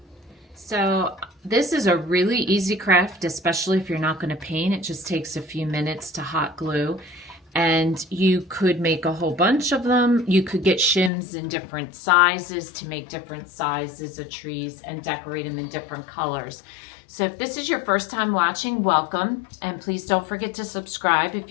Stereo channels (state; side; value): drops out; right; at 11.1 s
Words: So this is a really easy craft, especially if you're not going to paint. It just takes a few minutes to hot glue. And you could make a whole bunch of them. You could get shims in different sizes to make different sizes of trees and decorate them in different colors. So if this is your first time watching, welcome. And please don't forget to subscribe. If